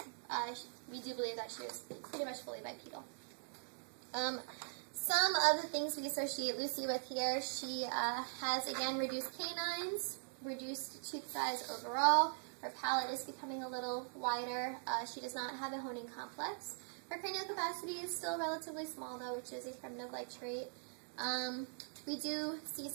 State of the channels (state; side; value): silent; left; digital silence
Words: we do believe that she was pretty much fully bipedal. Some of the things we associate Lucy with here, she has, again, reduced canines, reduced tooth size overall. Her palate is becoming a little wider. She does not have a honing complex. Her cranial capacity is still relatively small, though, which is a primitive-like trait. We do see